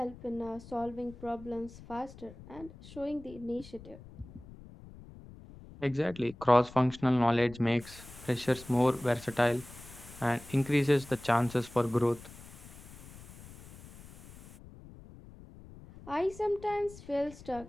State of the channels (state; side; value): noise; left; rumble, 18 dB below the sound